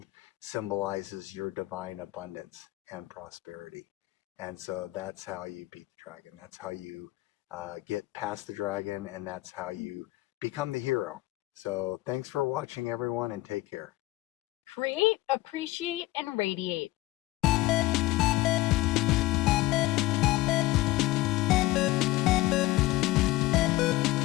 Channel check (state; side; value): quieter; right; 18.7 dB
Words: symbolizes your divine abundance and prosperity. And so that's how you beat the dragon. That's how you get past the dragon, and that's how you become the hero. So thanks for watching, everyone, and take care. Create, appreciate, and radiate.